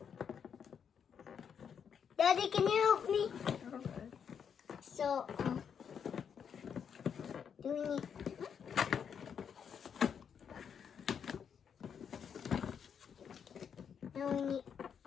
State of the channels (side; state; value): right; quieter; 7.4 dB